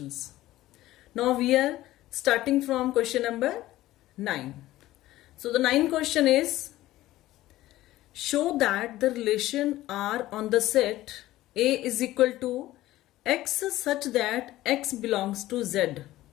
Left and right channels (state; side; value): quieter; right; 15.8 dB